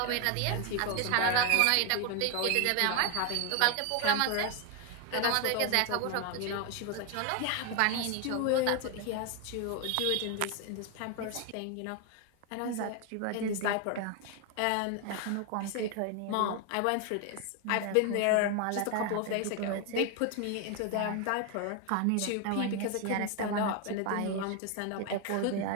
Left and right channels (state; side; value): different; both; correlation 0.01